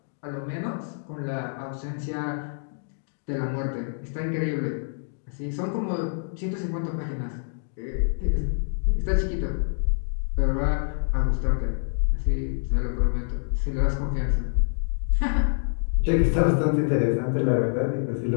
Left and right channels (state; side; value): silent; right; digital silence